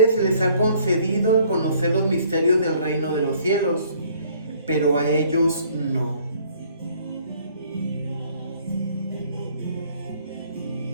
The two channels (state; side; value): inverted; both; correlation -0.60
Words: se les ha concedido conocer los misterios del reino de los cielos, pero a ellos no.